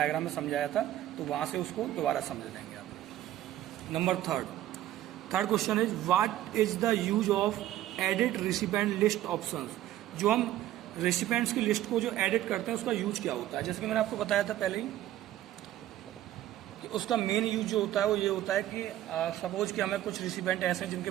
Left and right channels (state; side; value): quieter; left; 13.6 dB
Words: में समझाया था, तो वहाँ से उसको दोबारा समझ लेंगे आप। Number third question is what is the use of edit recipient list options. जो हम रेसिपेंट्स की लिस्ट को जो एडिट करते हैं उसका यूज क्या होता है, जैसे कि मैंने आपको बताया था पहले ही कि उसका मेन यूज जो होता है वो ये होता है कि सपोज कि हमें कुछ रेसिपेंट ऐसे हैं जिनके